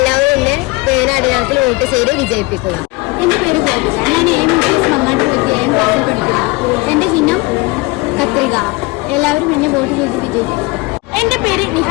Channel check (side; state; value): right; quieter; 23.5 dB